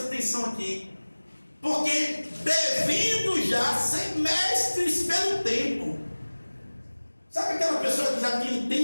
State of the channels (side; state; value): both; inverted; correlation -1.00